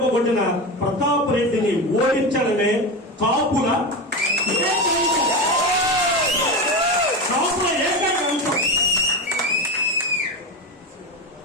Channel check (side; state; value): both; normal; correlation 0.20